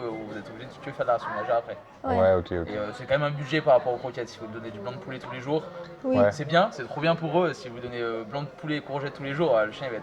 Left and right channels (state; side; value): identical; both; correlation 1.00